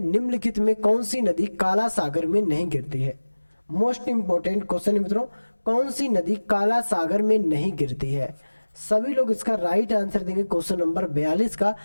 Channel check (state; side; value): inverted; both; correlation -1.00